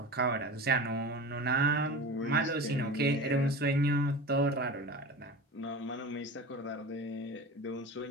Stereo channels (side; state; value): both; normal; correlation 0.32